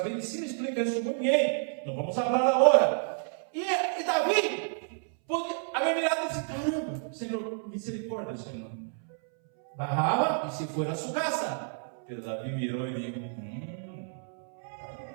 medicina explica isso muito bem. Não vamos falar agora. E Davi havia mirado e disse: caramba, Senhor, misericórdia, Senhor. Barrava e se foi a sua casa. Pero Davi mirou e disse:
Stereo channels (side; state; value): left; silent; 58 dB below the other